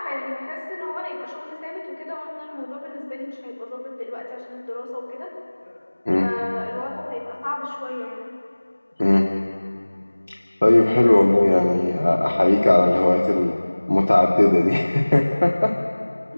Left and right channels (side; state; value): both; inverted; correlation -1.00